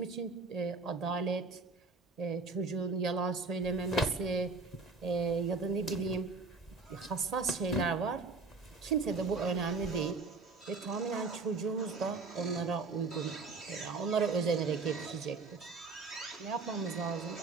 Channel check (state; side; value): quieter; left; 4.1 dB